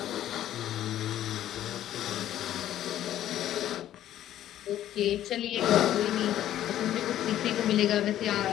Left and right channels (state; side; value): quieter; right; 12.2 dB